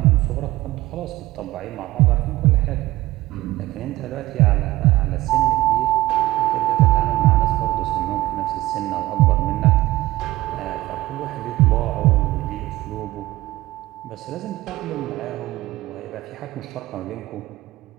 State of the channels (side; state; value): left; quieter; 17.6 dB